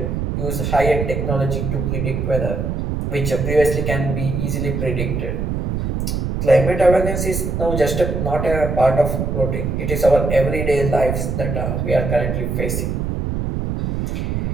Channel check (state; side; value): noise; right; rumble, 1 dB below the sound